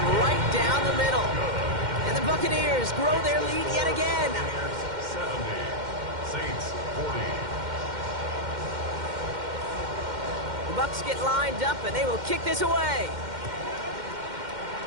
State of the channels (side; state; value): left; late; 2.1 ms